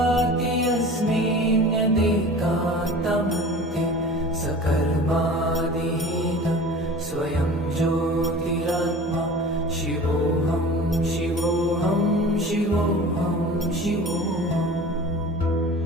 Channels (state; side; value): normal; both; correlation 0.40